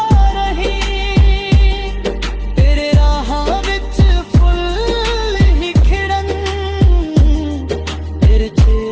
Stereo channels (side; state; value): both; identical; correlation 1.00